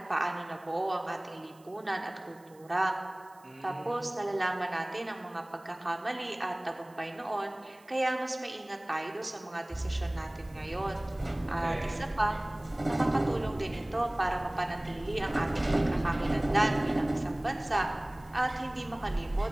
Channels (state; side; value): noise; right; hiss, 29 dB below the sound